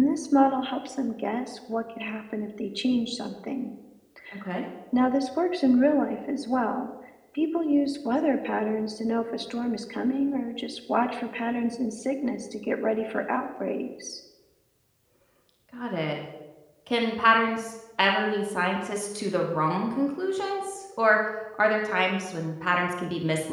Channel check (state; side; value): identical; both; correlation 1.00